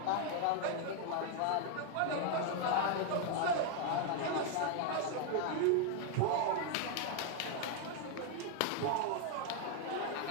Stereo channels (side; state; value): both; different; correlation 0.00